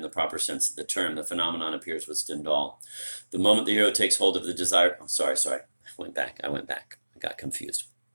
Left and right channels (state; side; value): inverted; both; correlation -1.00